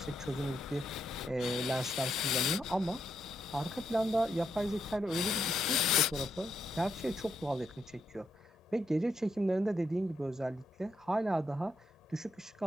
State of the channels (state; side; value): normal; both; correlation 0.80